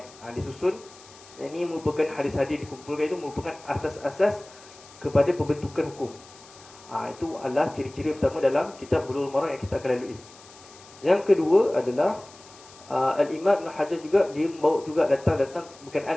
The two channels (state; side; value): noise; left; hiss, 22 dB below the sound